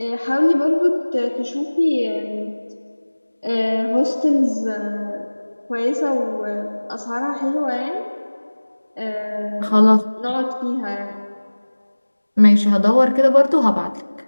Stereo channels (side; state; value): both; inverted; correlation -1.00